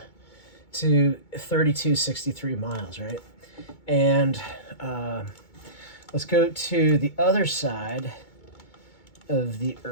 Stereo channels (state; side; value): late; right; 2.2 ms